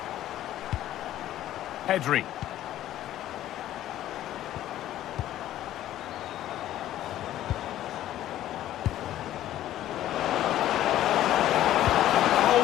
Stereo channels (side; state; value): right; quieter; 13.0 dB